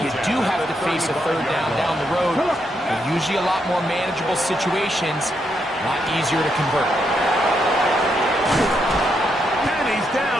you do have to face a 3rd down the road, they're usually a lot more manageable situations, a lot easier to convert. And he's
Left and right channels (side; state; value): both; normal; correlation 0.79